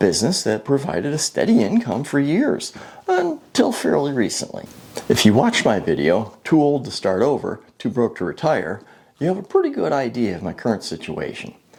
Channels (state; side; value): identical; both; correlation 1.00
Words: that provided a steady income for years, until fairly recently. If you watched my video, Too Old to Start Over, Too Broke to Retire, you have a pretty good idea of my current situation.